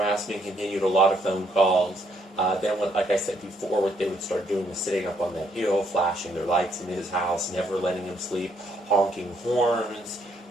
continued, a lot of phone calls. Then, like I said before, what they would start doing was sitting up on that hill, flashing their lights in his house, never letting him sleep, honking horns.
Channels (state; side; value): normal; both; correlation 0.71